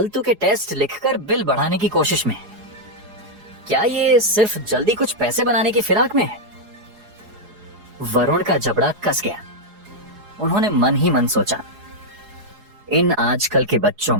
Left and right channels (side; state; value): left; late; 4.8 ms